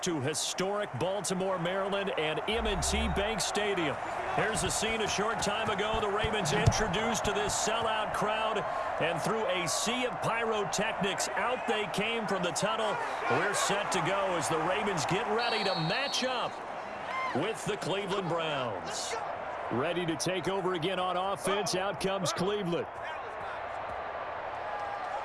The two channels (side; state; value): both; identical; correlation 1.00